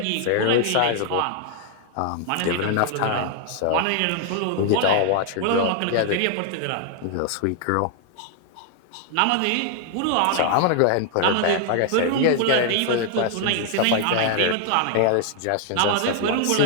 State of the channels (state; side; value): different; both; correlation 0.00